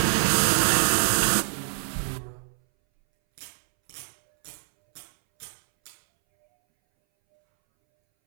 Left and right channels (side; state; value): left; silent; 62 dB below the other